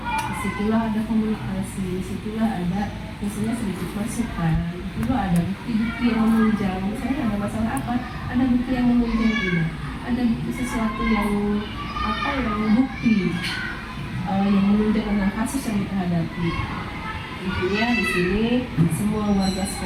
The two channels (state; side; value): identical; both; correlation 1.00